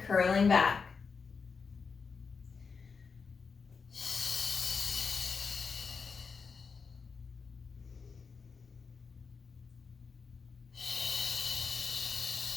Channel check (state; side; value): quieter; right; 5.3 dB